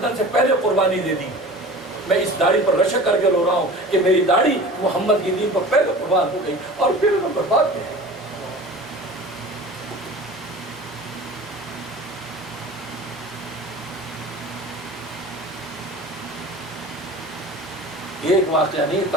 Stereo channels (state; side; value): normal; both; correlation 0.38